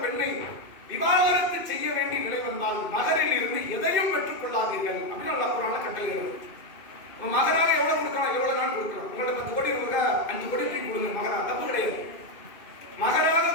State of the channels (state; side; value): late; right; 2.6 ms